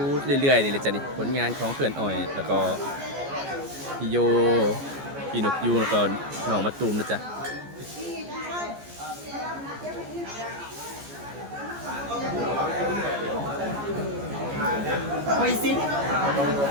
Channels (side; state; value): left; late; 14 ms